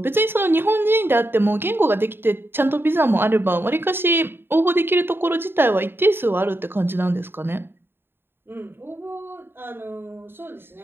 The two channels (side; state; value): left; late; 0.11 ms